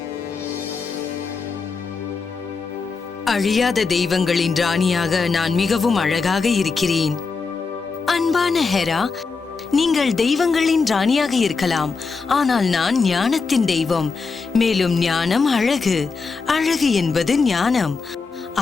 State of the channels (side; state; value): right; quieter; 4.7 dB